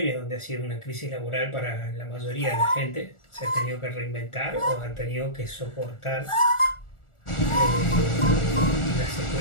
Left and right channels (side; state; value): right; late; 1.4 ms